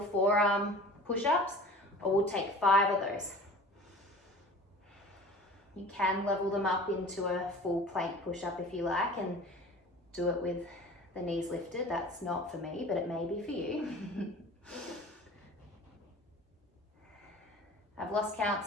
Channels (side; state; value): both; normal; correlation 0.41